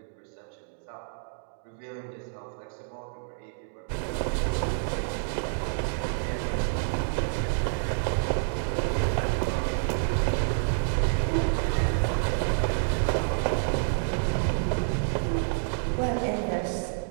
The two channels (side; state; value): left; silent; digital silence